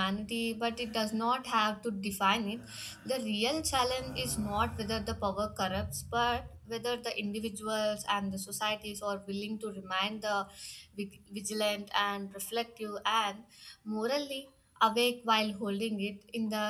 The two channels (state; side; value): identical; both; correlation 1.00